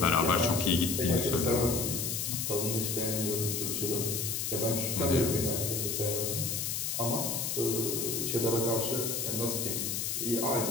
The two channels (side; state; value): left; noise; hiss, 1 dB below the sound